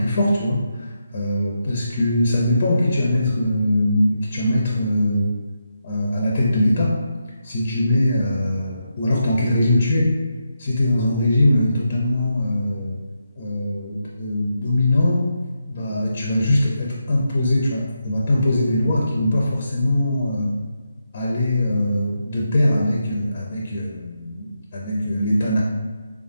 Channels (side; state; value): both; inverted; correlation -0.84